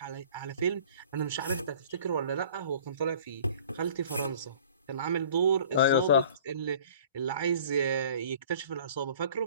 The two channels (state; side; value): inverted; both; correlation -0.49